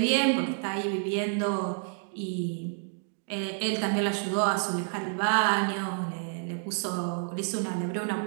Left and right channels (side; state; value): left; silent; 58 dB below the other